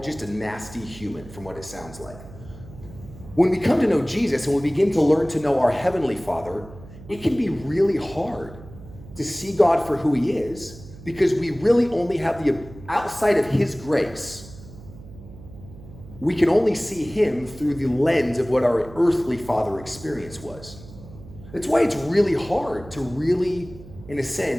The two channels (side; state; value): right; noise; hum, 17 dB below the sound